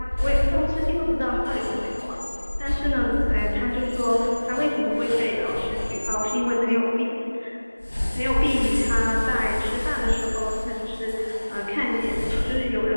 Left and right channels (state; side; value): inverted; both; correlation -1.00